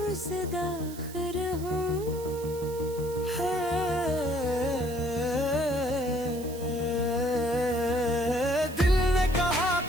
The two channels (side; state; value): right; noise; hiss, 16 dB below the sound